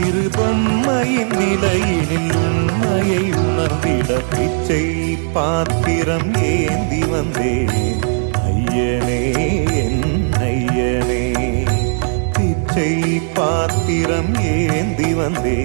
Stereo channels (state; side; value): silent; left; digital silence